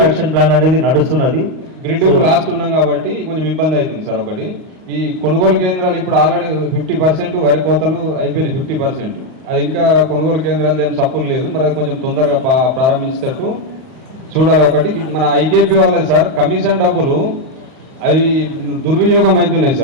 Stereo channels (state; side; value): late; left; 38 ms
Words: యాక్షన్ ప్లాన్ అనేది నడుస్తున్నది. గ్రిడ్ లాస్ట్ ఉన్నాం కాబట్టి కొంచెం ఇబ్బంది అవుతుంది సార్. ఒకటి ఈ కొనుగోలు కేంద్రాలు ఇప్పుడు ఆల్రెడీ 50% వరి కోతలు అయిపోయినాయి, 50%. అది ఇంకా కొనుగోలు కేంద్రాలు ఏం సప్పులు లేదు, మరి అది కొంచెం తొందరగా ప్రారంభించేటట్టు చూడాలి. ఒకటి మన ఐకేపీ వాళ్ళది సార్ కమిషన్ డబ్బులు అవి దుర్వినియోగం అవుతున్నాయి